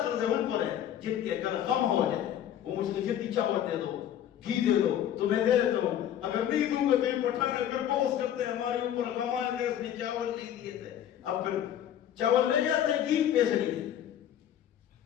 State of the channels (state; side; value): quieter; right; 10.6 dB